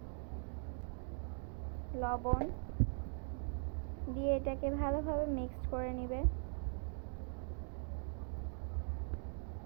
লবণ দিয়ে এটাকে ভালোভাবে মিক্সড করে নেবে।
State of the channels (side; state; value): left; silent; 50 dB below the other